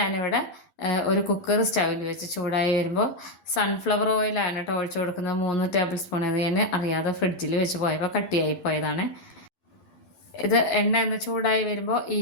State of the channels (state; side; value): late; right; 12 ms